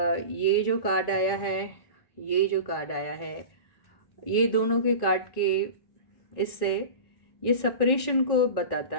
ये जो कार्ड आया है, ये जो कार्ड आया है, ये दोनों के कार्ड के इससे ये सेपरेशन को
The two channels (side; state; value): right; late; 1.9 ms